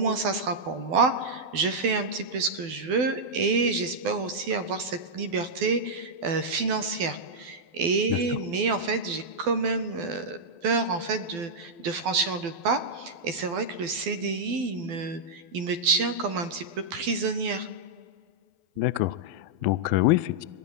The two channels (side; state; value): left; late; 12 ms